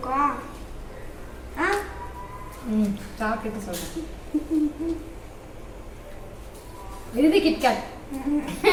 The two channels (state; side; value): identical; both; correlation 1.00